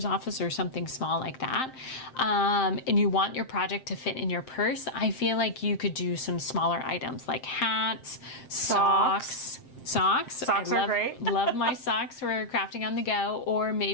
office or something small like that, and you want your project to fit in your purse, I feel like you could do some smaller items like hats, socks, Socks. Socks are great. Love my socks for crafting on the go, or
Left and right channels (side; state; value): right; late; 7.6 ms